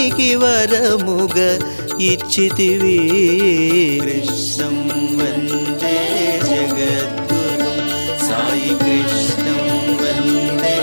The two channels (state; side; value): inverted; both; correlation -1.00